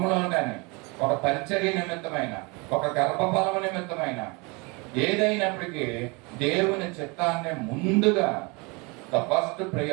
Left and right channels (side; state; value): left; quieter; 28.5 dB